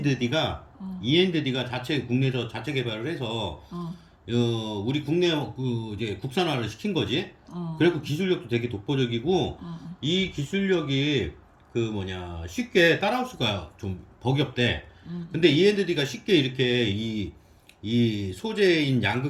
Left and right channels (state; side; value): identical; both; correlation 1.00